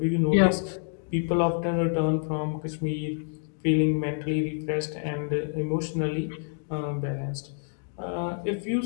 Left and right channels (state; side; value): silent; right; digital silence